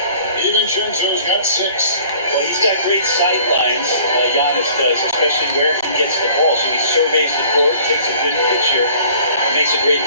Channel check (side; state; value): both; inverted; correlation -0.52